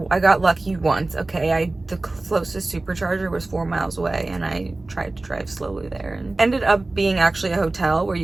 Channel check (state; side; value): quieter; left; 3.0 dB